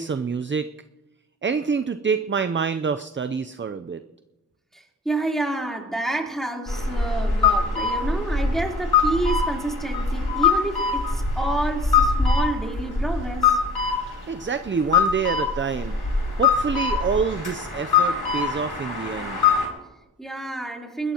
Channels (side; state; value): both; normal; correlation 0.40